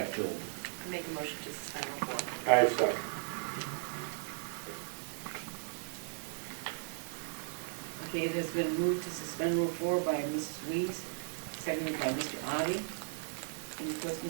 filled. I make a motion to suspend Rule 4. I second. Okay, it has been moved to suspend Rule 4 by Mrs. Weiss, seconded by Mr. Addie. Any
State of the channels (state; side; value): silent; left; digital silence